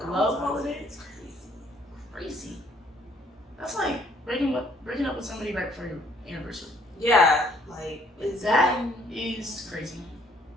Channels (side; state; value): both; normal; correlation 0.63